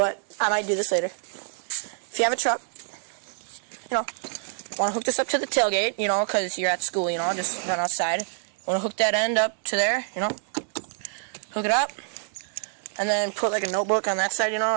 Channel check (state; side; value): silent; left; 61 dB below the other